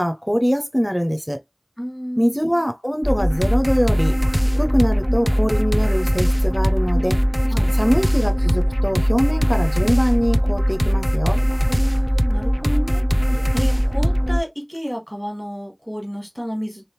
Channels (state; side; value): identical; both; correlation 1.00